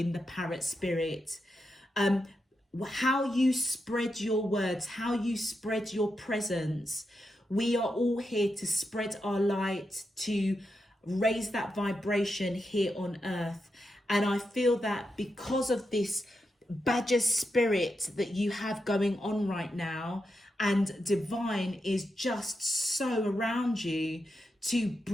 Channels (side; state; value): both; normal; correlation 0.86